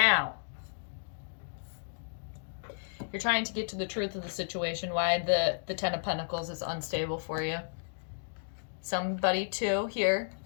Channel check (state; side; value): silent; right; digital silence